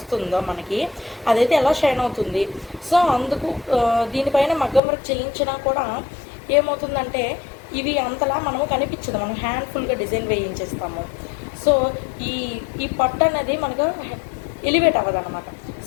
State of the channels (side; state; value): right; drops out; at 4.8 s